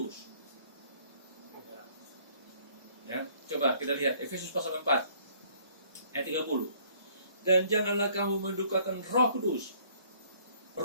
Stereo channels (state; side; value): inverted; both; correlation -0.60